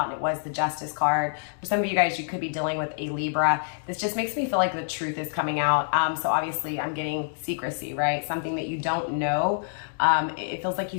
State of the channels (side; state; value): right; silent; digital silence